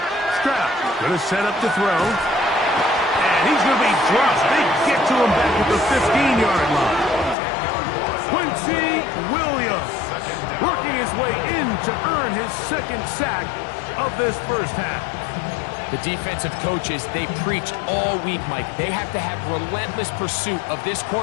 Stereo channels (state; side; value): drops out; right; at 7.4 s